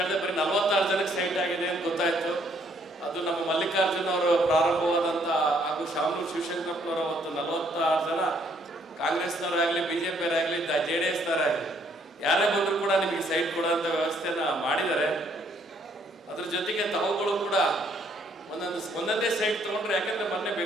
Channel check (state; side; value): normal; both; correlation 0.67